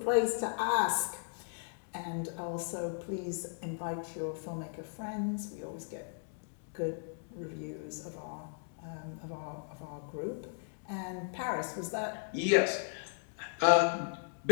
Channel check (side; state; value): right; silent; digital silence